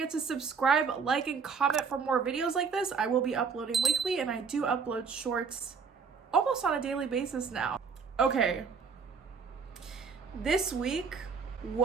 to subscribe, like, and comment for more videos like this. I will be uploading weekly, and I do upload shorts almost on a daily basis now. Okay, this week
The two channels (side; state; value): left; quieter; 5.6 dB